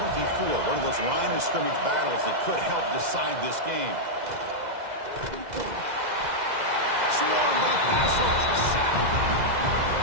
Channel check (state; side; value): late; left; 2.0 ms